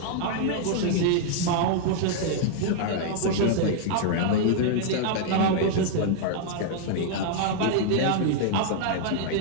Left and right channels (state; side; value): different; both; correlation 0.00